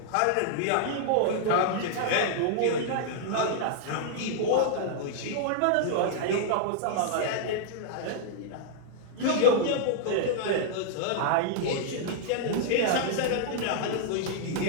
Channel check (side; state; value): both; different; correlation -0.01